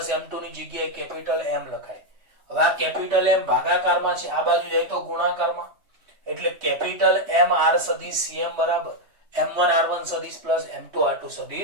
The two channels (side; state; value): left; late; 3.2 ms